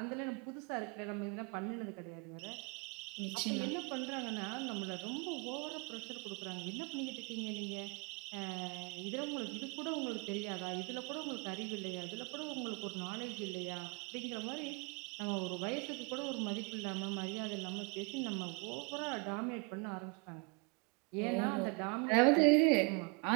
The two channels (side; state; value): left; quieter; 32.2 dB